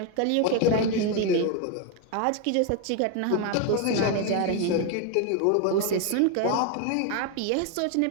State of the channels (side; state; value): both; different; correlation 0.01